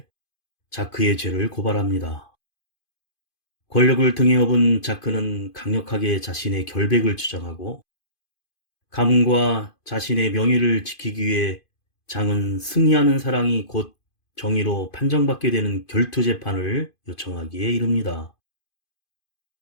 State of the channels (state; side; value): late; right; 2.5 ms